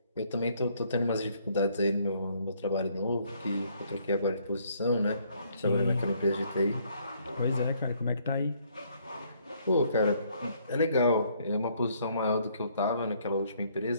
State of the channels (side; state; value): both; inverted; correlation -0.67